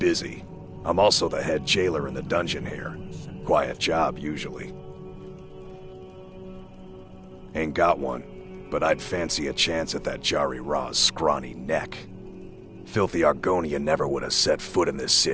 I'm also the head jailer in the dungeon here. Quiet job, usually. Ain't got one, but I'd fancy a chance at that Jari Ra's scrawny neck. Filthy Argonia never would have set foot in this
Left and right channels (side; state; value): both; identical; correlation 1.00